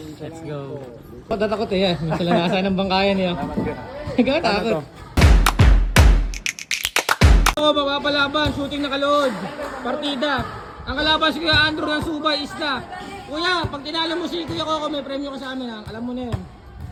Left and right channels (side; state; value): both; identical; correlation 1.00